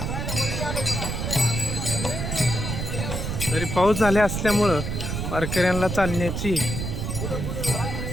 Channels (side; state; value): right; noise; rumble, 3 dB below the sound